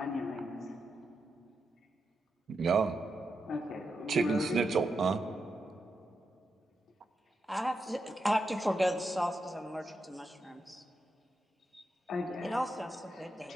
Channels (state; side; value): normal; both; correlation 0.86